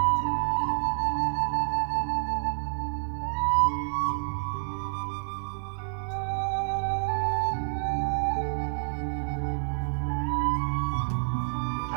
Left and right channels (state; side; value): silent; left; digital silence